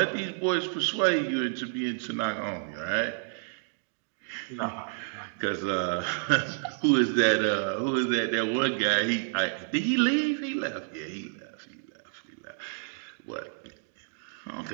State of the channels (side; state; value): left; silent; digital silence